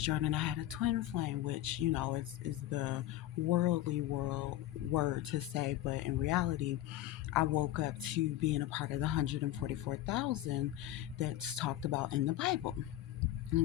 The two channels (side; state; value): right; quieter; 14.2 dB